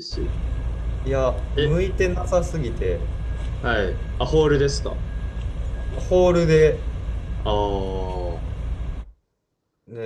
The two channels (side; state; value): both; identical; correlation 1.00